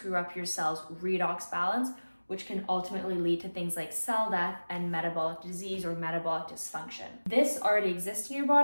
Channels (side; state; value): both; inverted; correlation -1.00